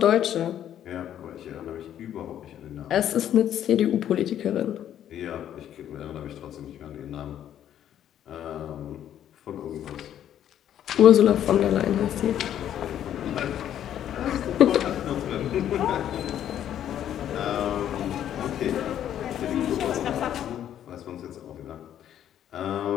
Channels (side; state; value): right; quieter; 10.6 dB